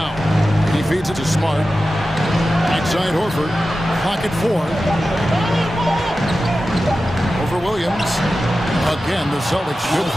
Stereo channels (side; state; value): both; normal; correlation 0.93